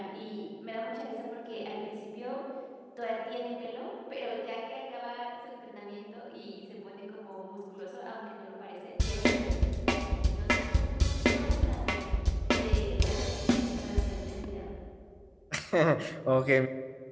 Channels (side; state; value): both; identical; correlation 1.00